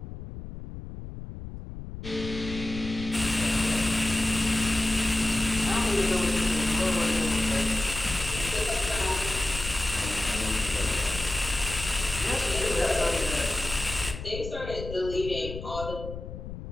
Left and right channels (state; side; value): noise; left; rumble, 10 dB below the sound